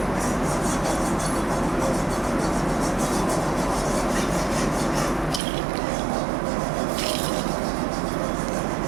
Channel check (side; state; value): left; drops out; at 5.4 s